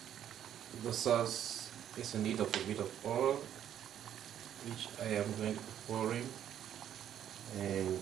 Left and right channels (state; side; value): quieter; left; 10.3 dB